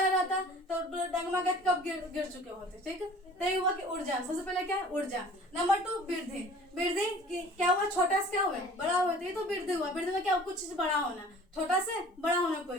ना रहता तो डगमा के कब गिर चुके होते, ठीक है। तो ये हुआ कि ऊर्जा, सबसे पहले क्या है, ऊर्जा। नंबर 2 वृद्धि क्या हुआ, छोटा से क्या हुआ, बड़ा हुआ, तो ये तो वृद्धि हुआ। वृद्धि में क्या, कुछ चीज बड़ा होना, छोटा से बड़ा होना कोई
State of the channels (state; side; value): normal; both; correlation 0.47